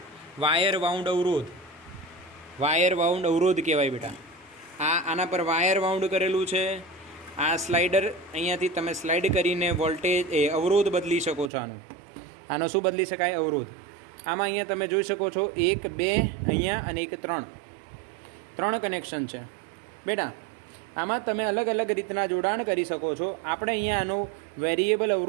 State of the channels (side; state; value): left; drops out; at 11.5 s